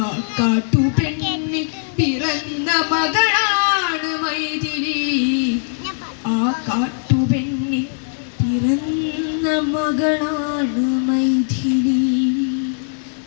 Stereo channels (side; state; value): right; silent; digital silence